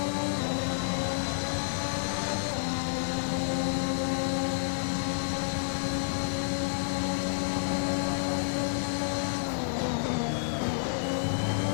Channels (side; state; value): right; silent; 58 dB below the other